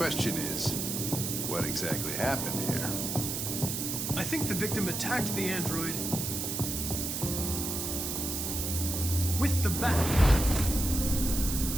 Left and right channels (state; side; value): noise; right; hiss, 2 dB below the sound